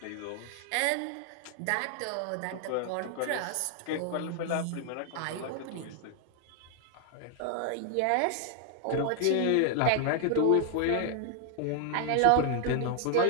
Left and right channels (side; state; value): both; different; correlation 0.00